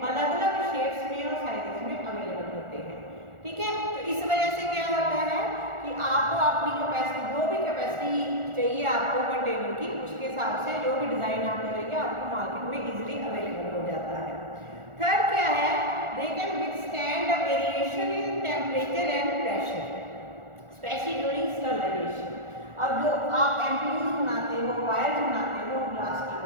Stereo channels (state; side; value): late; left; 1.4 ms